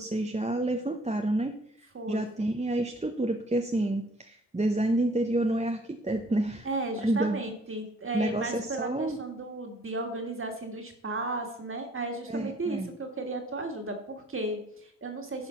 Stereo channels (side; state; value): both; normal; correlation 0.59